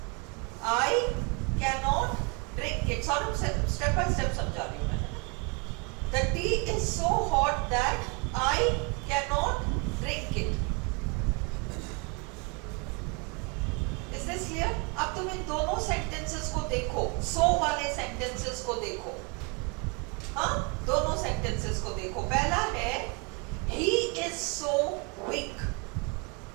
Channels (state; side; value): quieter; left; 32.4 dB